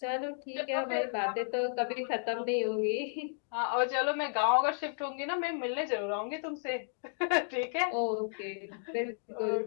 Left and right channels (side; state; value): right; silent; digital silence